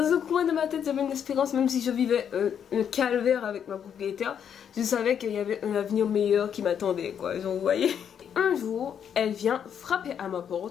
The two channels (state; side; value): quieter; right; 8.3 dB